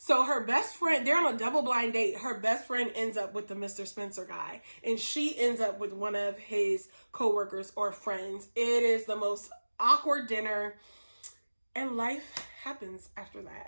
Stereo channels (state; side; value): inverted; both; correlation -1.00